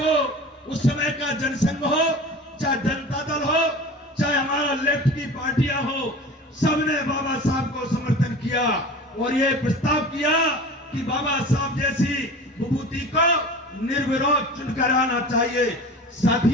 उस समय का जनसंघ हो, चाहे जनता दल हो, चाहे हमारा लेफ्ट की पार्टियां हो, सबने बाबा साहब को समर्थन किया और ये प्रस्ताव किया कि बाबा साहब जैसी विभूति को निर्विरोध चुनकर आना चाहिए।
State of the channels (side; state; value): both; normal; correlation 0.36